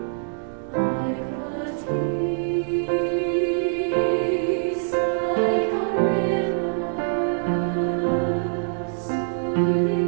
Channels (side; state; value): left; silent; digital silence